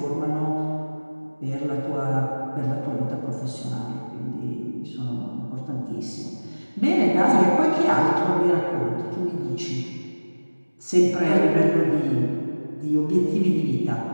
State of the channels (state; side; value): inverted; both; correlation -1.00